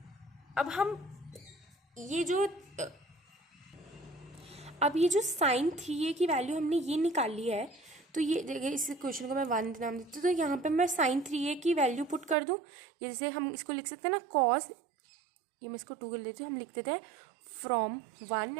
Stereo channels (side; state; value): left; drops out; at 12.4 s